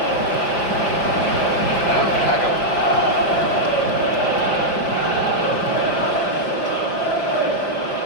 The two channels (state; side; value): late; right; 5.4 ms